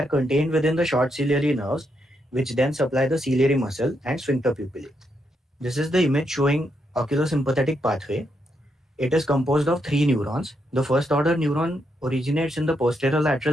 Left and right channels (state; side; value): normal; both; correlation 0.80